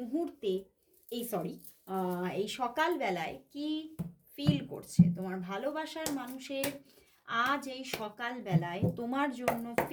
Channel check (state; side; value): identical; both; correlation 1.00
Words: এই সকালবেলায় কি ফিল করছে। তোমার ভালোবাসার মানুষের আজ এই সকালবেলায় তোমার জন্য